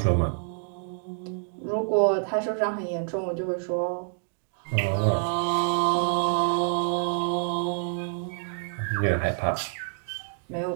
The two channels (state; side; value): silent; left; digital silence